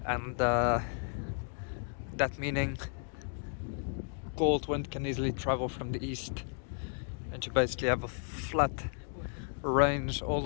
And that meaning cold wind can easily travel from the east. And you basically have a flat range all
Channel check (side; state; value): right; silent; 55 dB below the other